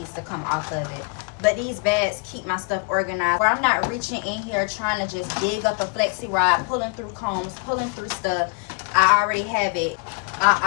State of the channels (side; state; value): right; quieter; 30.4 dB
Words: to come off of it. But these bags keep my stuff organized, where I'm not reaching in here trying to just dig up a flexi rod, pulling through combs, pulling through stuff. I already have it.